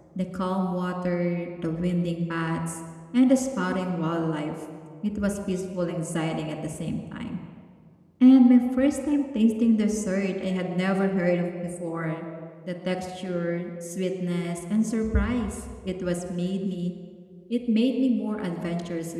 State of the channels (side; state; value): both; identical; correlation 1.00